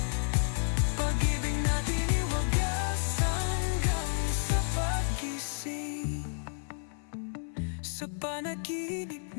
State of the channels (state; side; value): silent; right; 56 dB below the other